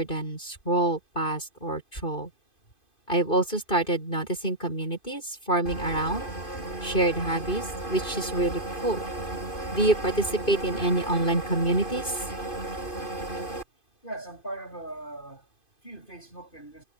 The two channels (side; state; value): right; late; 2.5 ms